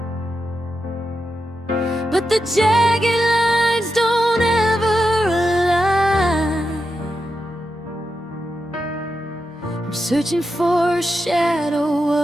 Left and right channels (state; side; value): normal; both; correlation 0.88